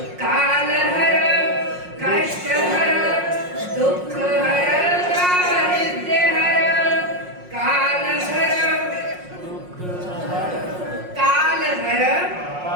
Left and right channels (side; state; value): left; late; 5.5 ms